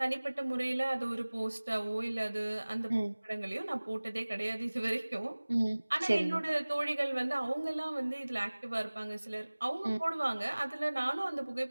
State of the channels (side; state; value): both; inverted; correlation -1.00